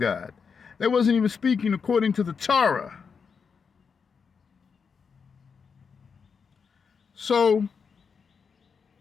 They wasn't even speaking according to the Torah. So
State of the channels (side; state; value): right; quieter; 5.9 dB